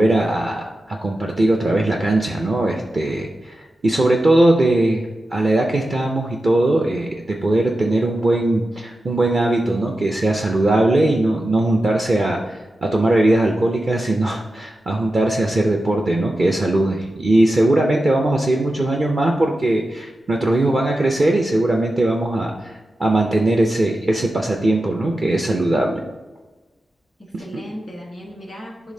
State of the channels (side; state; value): both; normal; correlation 0.92